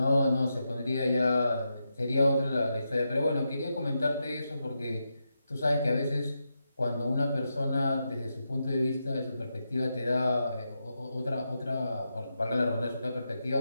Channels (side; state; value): both; inverted; correlation -0.86